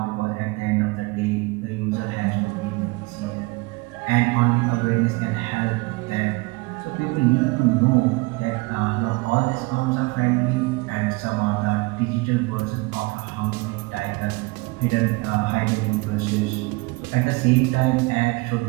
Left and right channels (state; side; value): quieter; left; 24.5 dB